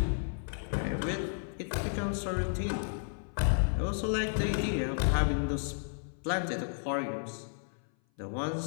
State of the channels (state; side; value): silent; right; 56 dB below the other